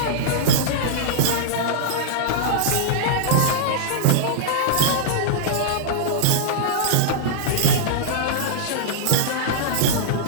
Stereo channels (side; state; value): both; different; correlation -0.02